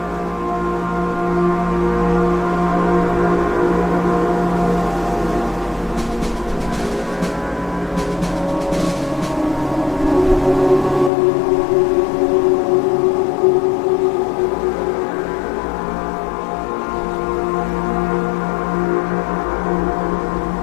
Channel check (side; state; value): right; drops out; at 11.1 s